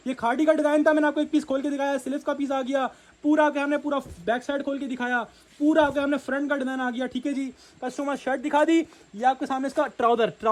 ये खाड़ी का डिज़ाइन था, मैंने आपको एक पीस खोल के दिखाया, स्लीव्स का पीस आ गया पूरा, के हमने पूरा बैक साइड खोल के दिखाया, पूरा के हमने फ्रंट का डिज़ाइन आ गया। ठीक है जी, कस्टमर शर्ट दिखा दी, ये आपके सामने इसका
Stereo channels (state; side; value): identical; both; correlation 1.00